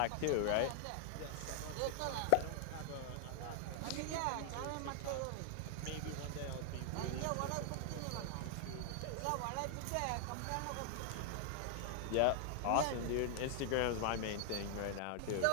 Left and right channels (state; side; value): different; both; correlation 0.00